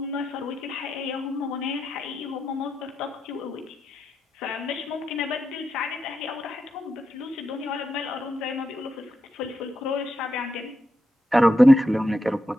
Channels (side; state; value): both; normal; correlation 0.86